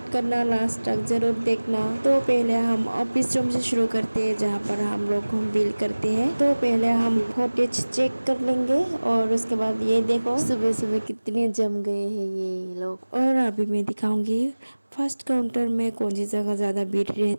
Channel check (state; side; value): inverted; both; correlation -1.00